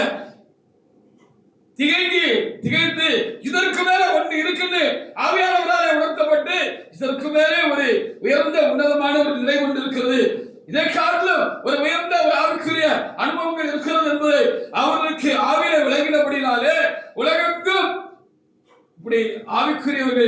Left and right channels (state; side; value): identical; both; correlation 1.00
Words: திகைத்து இதற்கு மேல ஒன்று இருக்குது ஆவியானவராலே உணர்த்தப்பட்டு இதற்கு மேலே ஒரு உயர்ந்த உன்னதமான ஒரு நிலை கொண்டு இருக்கிறது, இதை காட்டிலும் ஒரு உயர்ந்த ஒரு ஆவிக்குரிய அனுபவங்கள் இருக்கிறது என்பதை அவர்களுக்கு ஆவியில விளங்கினபடினாலே உலகெங்கும் இப்படி